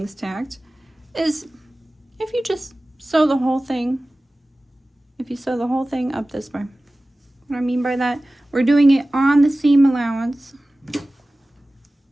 tacked is if you just sew the whole thing. If you sew the whole thing up this way. What I mean by that, we're doing it on the seam allowance.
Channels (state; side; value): normal; both; correlation 0.97